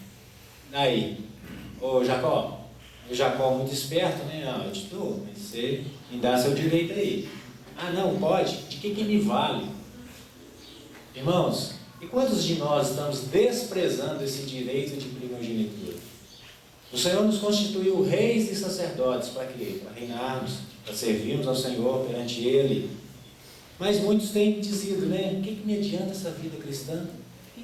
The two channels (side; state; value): both; identical; correlation 1.00